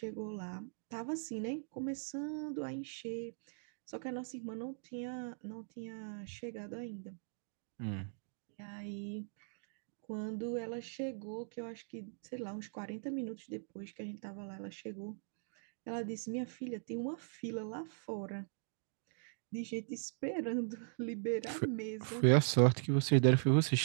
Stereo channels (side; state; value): left; silent; digital silence